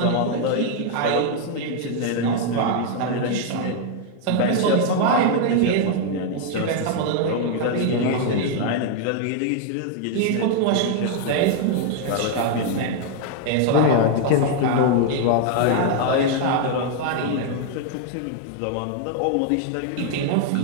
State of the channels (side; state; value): both; different; correlation 0.00